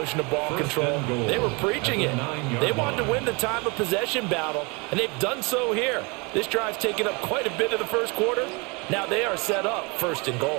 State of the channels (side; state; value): left; quieter; 29.2 dB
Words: of ball control. They were preaching it. They wanted to win the time of possession battle, and they've done so here. This drive's taken up quite a bit of the first quarter. Now they are set up 1st and